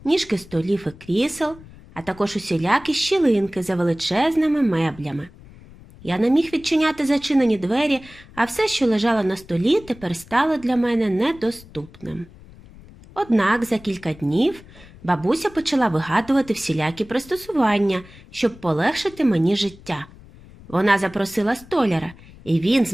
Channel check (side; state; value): left; noise; rumble, 21 dB below the sound